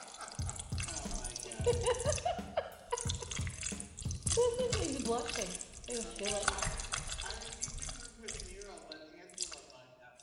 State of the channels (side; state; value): both; identical; correlation 1.00